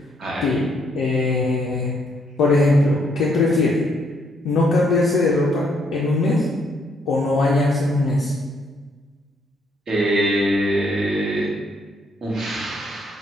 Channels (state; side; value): normal; both; correlation 0.71